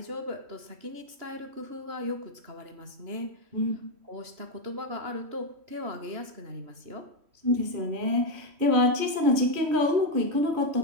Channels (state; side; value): late; left; 3.1 ms